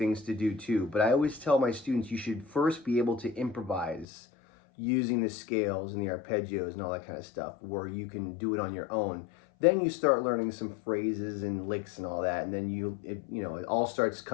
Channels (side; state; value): right; drops out; at 4.0 s